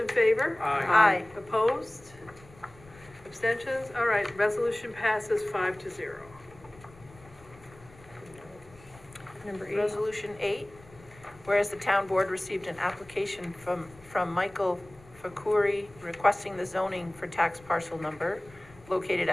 favor? Aye. Opposed? Abstentions? All right, resolution passes 5-0. Number 8. Resolution 8, whereas the town board received an application from Michael Fakuri requesting the zoning for tax parcel number located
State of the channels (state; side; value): noise; left; rumble, 23 dB below the sound